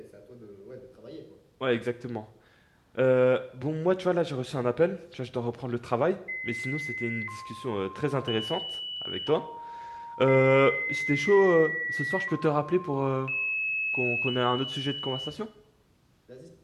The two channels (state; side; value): identical; both; correlation 1.00